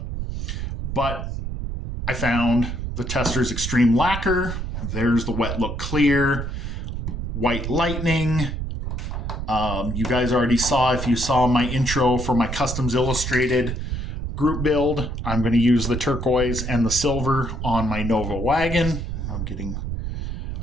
But I found the Testors Extreme Lacquer. There's the Wet Look Clear, White Lightning. You guys already saw, if you saw my intro for my Customs Illustrated group build, I'm going to use the turquoise and the silver on my Nova wagon. I'm getting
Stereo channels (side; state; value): right; noise; rumble, 4 dB below the sound